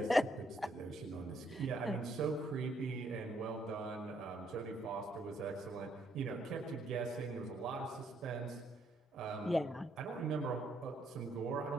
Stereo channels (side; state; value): both; normal; correlation 0.72